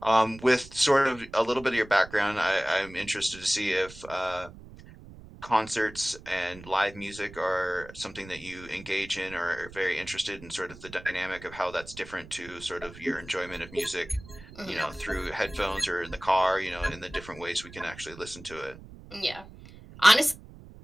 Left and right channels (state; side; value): noise; right; rumble, 18 dB below the sound